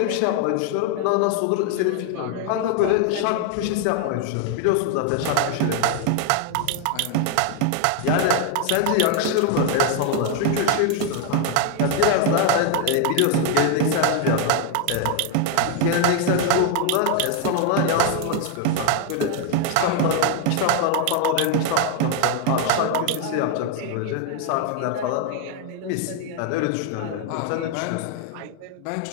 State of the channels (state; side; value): different; both; correlation 0.00